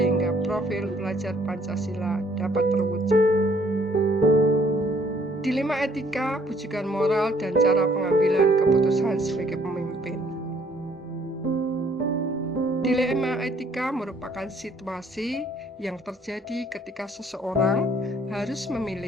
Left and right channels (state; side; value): normal; both; correlation 0.62